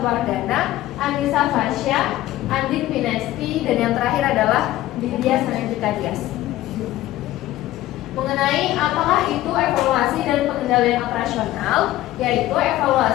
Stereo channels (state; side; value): quieter; right; 15.2 dB